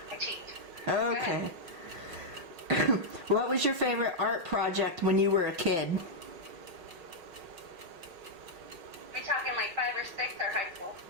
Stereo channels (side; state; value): left; late; 5.8 ms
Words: I cheat. Okay. What was your favorite art project when you were a kid? We talking like 5 or 6 or high school?